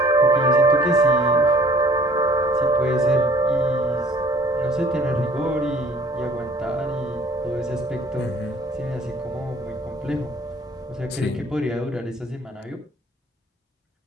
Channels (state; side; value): normal; both; correlation 0.55